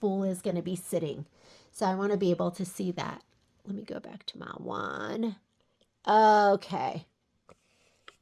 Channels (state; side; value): identical; both; correlation 1.00